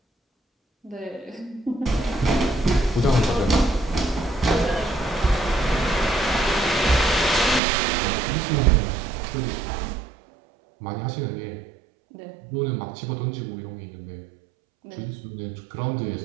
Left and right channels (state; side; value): drops out; left; at 7.6 s